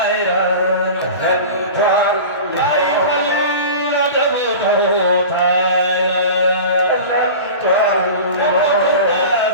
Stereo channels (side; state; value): both; inverted; correlation -0.34